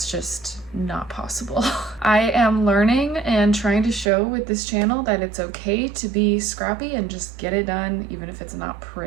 just not possible. I am learning and trying to show with this channel that it's okay to be scrappy and just get it done, even if it's not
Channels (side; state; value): left; drops out; at 4.1 s